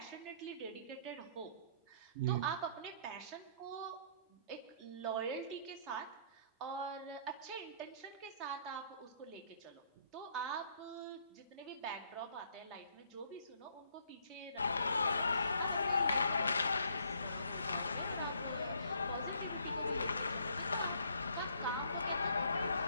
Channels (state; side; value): inverted; both; correlation -0.64